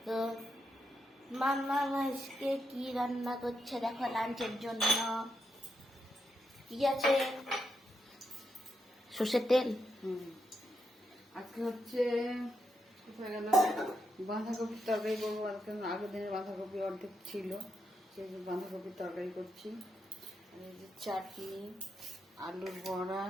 তো মামা আজকে কি রান্না করছে দেখো লাঞ্চের জন্য। কি আছে? সর্ষের তেল। আজকে হচ্ছে কোথায় গেল বাঁধাকপির তরকারি করবো। আজকে আগের দিনের বাঁধাকপি অর্ধেক ছিল, সেই বাঁধাকপির তরকারি করছি। এই যে চাটনি, আলুর বড়া,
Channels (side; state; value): both; normal; correlation 0.83